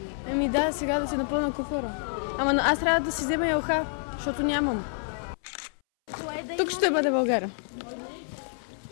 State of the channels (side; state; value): right; silent; 59 dB below the other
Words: Еми да, сега да си напълна куфара. Ама аз трябва да си взема елха, защото нямам. Тук ще бъде България.